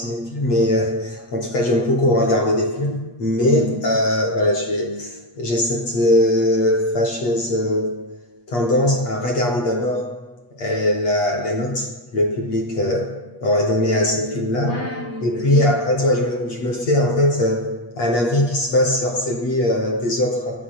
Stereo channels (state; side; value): late; right; 8.4 ms